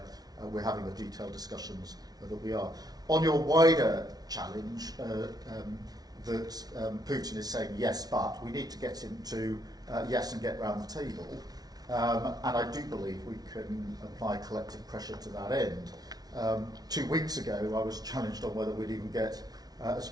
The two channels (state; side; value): late; left; 0.19 ms